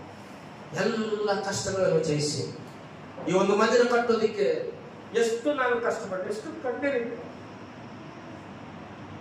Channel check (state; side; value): identical; both; correlation 1.00